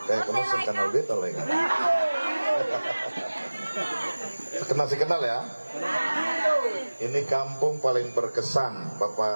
Kayak kamu kenal beta lah ya. Kenal ya. Ini kampung paling berkesan,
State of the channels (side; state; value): both; inverted; correlation -1.00